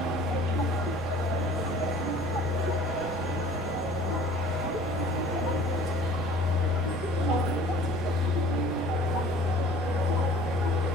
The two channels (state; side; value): noise; right; hum, 19 dB below the sound